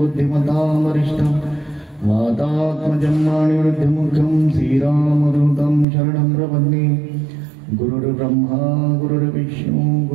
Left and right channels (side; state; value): left; drops out; at 5.9 s